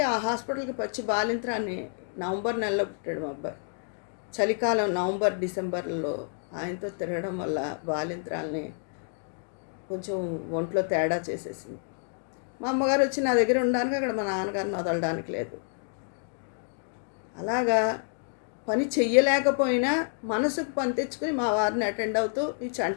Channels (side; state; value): right; silent; digital silence